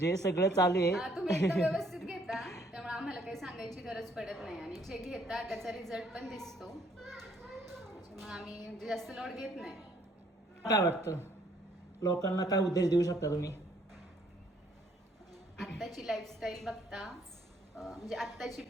सगळं चालू आहे. तुम्ही एकदम व्यवस्थित घेता त्यामुळे आम्हाला काही सांगायची गरज पडत नाही आणि जे घेता त्याचा रिझल्ट पण दिसतो, मग आम्ही जास्त लोड घेत नाही. काय वाटतं, लोकांना काय उपदेश देऊ शकता तुम्ही? आत्ताची लाईफस्टाईल बघता म्हणजे आत्ताची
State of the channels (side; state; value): both; normal; correlation 0.65